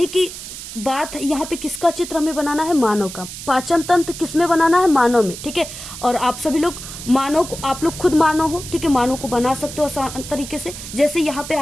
कि बात यहाँ पे किसका चित्र हमें बनाना है, मानव का। पाचन तंत्र किसमें बनाना है, मानव में, ठीक है। और आप सभी लोग मानव को, आप लोग खुद मानव हो, ठीक है, मानव को बना सकते हो आसान तरीके से। जैसे यहाँ पे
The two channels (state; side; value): noise; right; hiss, 11 dB below the sound